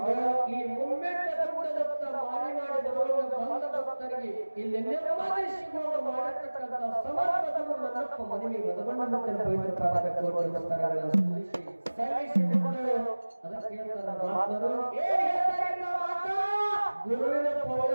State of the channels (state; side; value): inverted; both; correlation -1.00